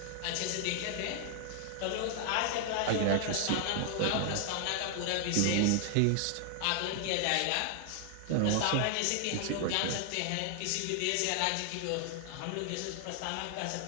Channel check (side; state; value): both; different; correlation 0.00